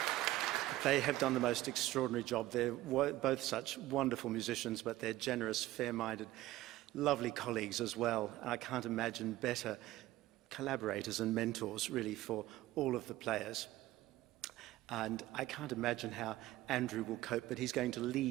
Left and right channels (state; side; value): quieter; left; 16.3 dB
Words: They have done the most extraordinary job. They're both such wonderful musicians, but they're generous, fair-minded, lovely colleagues as well. I can't imagine better collaborators and mentors, really, for all of the players. And I can't imagine how Andrew will cope, but he's going to